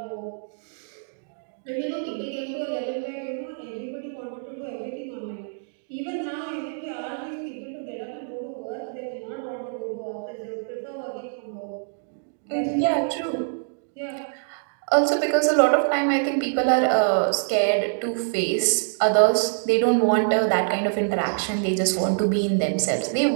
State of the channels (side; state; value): left; silent; digital silence